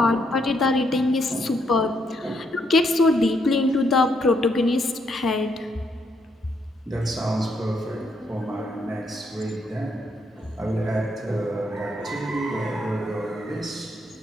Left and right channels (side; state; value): both; normal; correlation 0.75